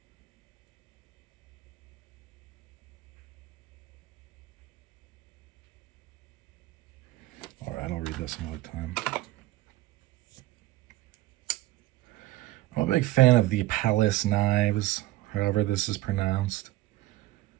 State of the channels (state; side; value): quieter; left; 16.6 dB